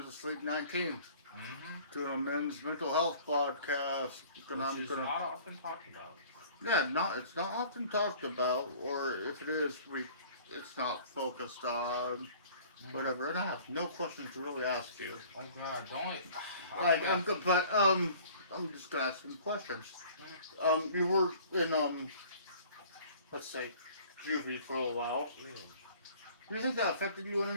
asleep 19, Mm-hmm. doing a men's mental health podcast. Which is not often talked about. Yeah, it's not often talked about, or if it is, it's not focused on, Mm-hmm. whatever. And I have no questions to really ask you. Oh God, don't. I Like, feel. I'm good, but, I'm just gonna ask some questions. Mm, You were in, let's say, juvie for a while. yeah. Do you think that affected you in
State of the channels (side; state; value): both; inverted; correlation -0.50